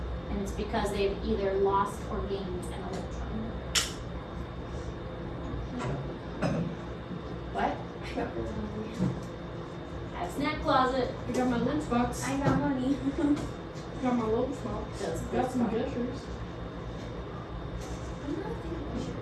And it's because they've either lost or gained an electron. What? I got really hungry. I have a snack closet. I got my lunchbox. I got money. Got my lunchbox. Does Got some gushers. I'm not thinking I should.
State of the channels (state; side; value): identical; both; correlation 1.00